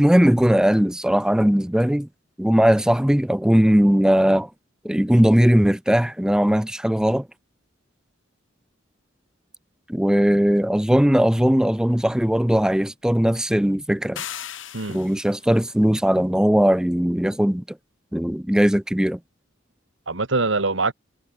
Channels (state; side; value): normal; both; correlation 0.95